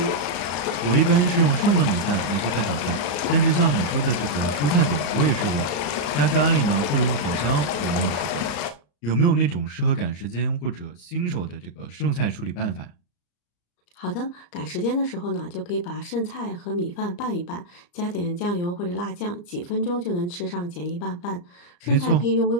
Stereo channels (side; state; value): right; late; 34 ms